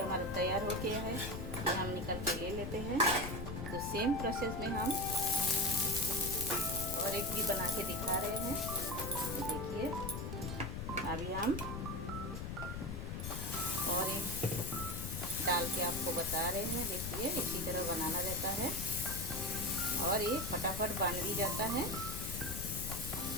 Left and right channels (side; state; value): left; noise; rumble, 5 dB below the sound